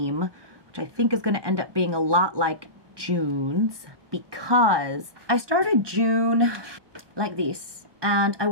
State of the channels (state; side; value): late; left; 1.2 ms